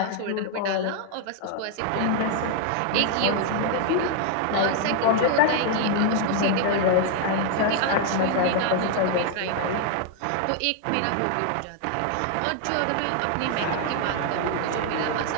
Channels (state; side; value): different; both; correlation 0.00